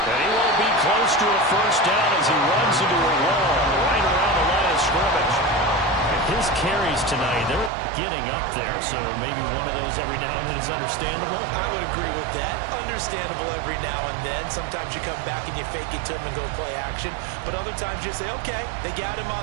And he won't be close to a first down as he runs into a wall right around the line of scrimmage. His carries tonight, they're getting up there, so maybe one of those every now and then is understandable. I would agree with that. Understandable every now and then. Sometimes you come back and you fake it to him and go play action. But other times you say, okay, they got him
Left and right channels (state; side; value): drops out; left; at 7.7 s